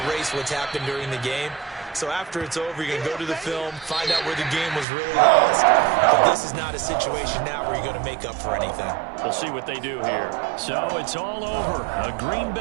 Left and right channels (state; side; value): drops out; left; at 4.9 s